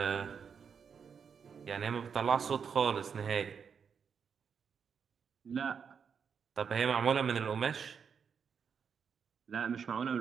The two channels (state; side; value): quieter; left; 6.7 dB